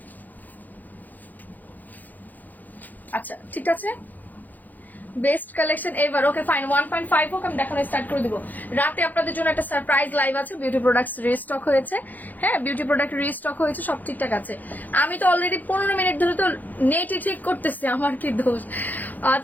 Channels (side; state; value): right; late; 0.083 ms